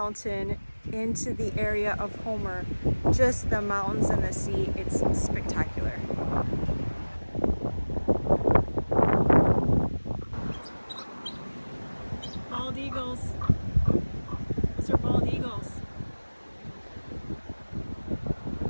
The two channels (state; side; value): inverted; both; correlation -1.00